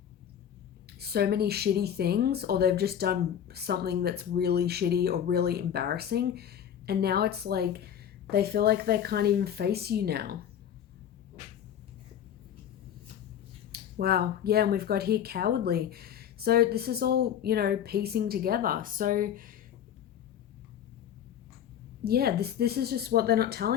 so many shitty things, or they've just done something that's really shitty or really embarrassing, and now it's like They feel like they can't even face you now. Wow. Yeah, and we've got here cowardly. So this is all, you know, piecing together. So yeah, this is just what they're not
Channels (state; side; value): quieter; right; 9.5 dB